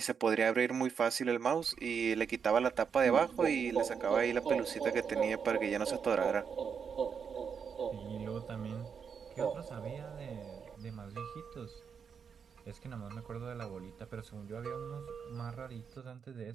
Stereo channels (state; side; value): quieter; left; 6.6 dB